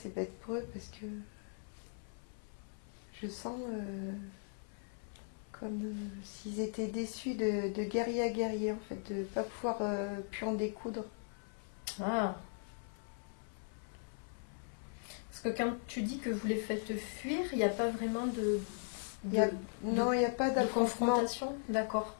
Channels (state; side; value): silent; right; 52 dB below the other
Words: bête pour eux, parce que je sens comme s'ils étaient déçus de guerrier à guerrier, en fait, de ne pas pouvoir plus en découdre. Ah. Parce que quand tu dis que vous les faites fuir, il n'y a pas vraiment Non, il n'y a pas de d'affrontement. confrontation? D'accord.